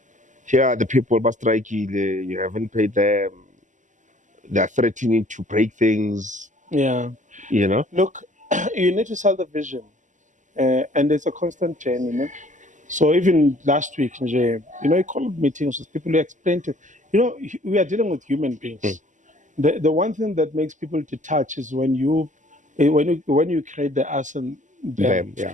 here are the people, you haven't paid them. they're threatening to break things, Yeah. you know. Look, you need to sell the vision, and it's a constant journey. You know? So even last week, you called meetings with people who explain to, we are dealing with human beings. The one thing that makes people detach is when you create the us and them.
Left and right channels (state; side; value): late; left; 0.36 ms